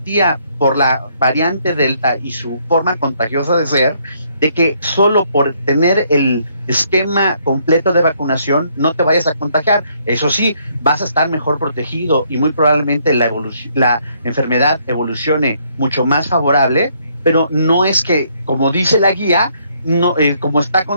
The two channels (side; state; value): both; inverted; correlation -0.69